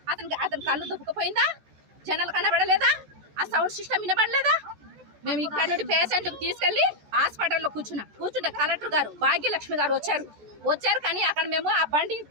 అతని కళ్ళు దుబ్బుకుపోయిందా? జనాలు కనబడలేదా? ఆ సౌండ్ సిస్టమ్ వినబడలేదా? మేము ఇక్కడ నుండి పేషెంట్కి తీసుకెళ్లి హాస్పిటల్లో కూర్చుంటే కలెక్టర్ గారు భాగ్యలక్ష్మి గారు వచ్చారు. కానీ అక్కడ మేము ఆ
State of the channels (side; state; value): left; late; 14 ms